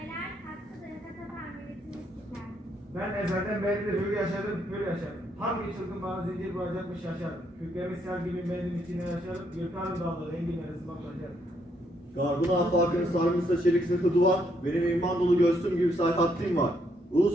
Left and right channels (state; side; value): normal; both; correlation 0.73